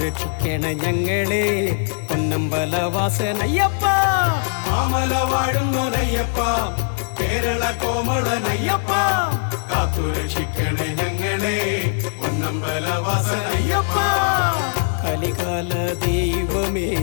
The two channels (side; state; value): right; silent; 65 dB below the other